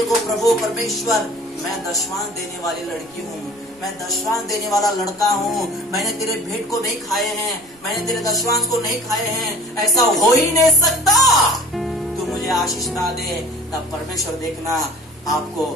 प्रभु परमेश्वर, मैं दशवांश देने वाली लड़की हूँ, मैं दशवांश देने वाला लड़का हूँ, मैंने तेरे भेंट को नहीं खाए हैं, मैंने तेरे दशवांश को नहीं खाए हैं, ऐसा हो ही नहीं सकता। तू मुझे आशीष ना दे, तब परमेश्वर देखना आपको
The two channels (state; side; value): noise; right; rumble, 29 dB below the sound